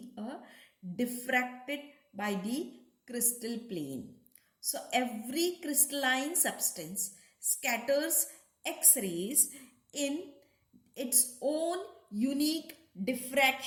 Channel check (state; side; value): identical; both; correlation 1.00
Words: diffracted by the crystal plane. So every crystalline substance scatters X-rays in its own unique